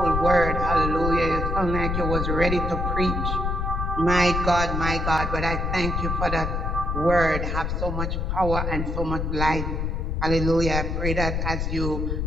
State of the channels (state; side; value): noise; left; rumble, 1 dB below the sound